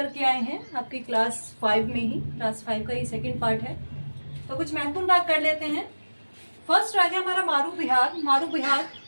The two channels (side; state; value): both; inverted; correlation -1.00